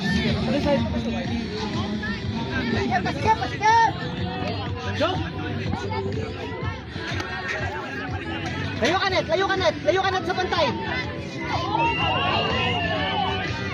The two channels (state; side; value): identical; both; correlation 1.00